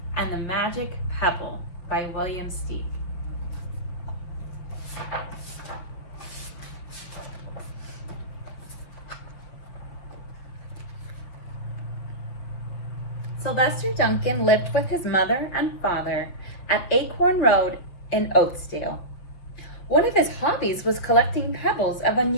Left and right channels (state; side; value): late; right; 6.0 ms